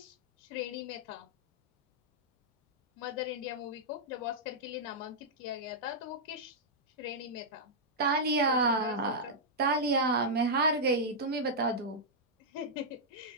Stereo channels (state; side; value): normal; both; correlation -0.09